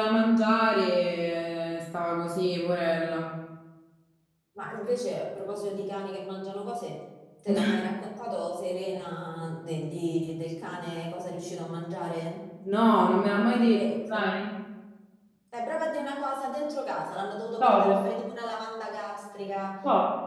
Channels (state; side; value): identical; both; correlation 1.00